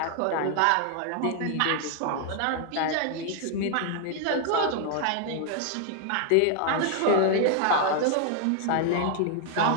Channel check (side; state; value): both; different; correlation 0.00